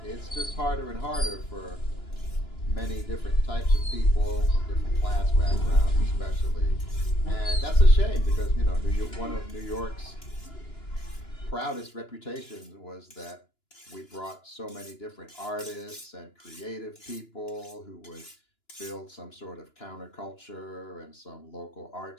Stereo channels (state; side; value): late; right; 2.9 ms